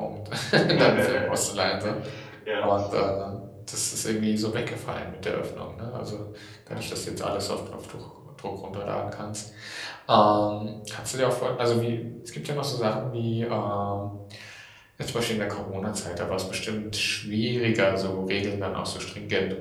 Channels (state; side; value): identical; both; correlation 1.00